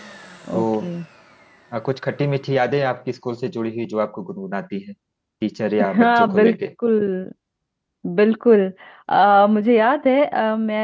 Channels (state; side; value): identical; both; correlation 1.00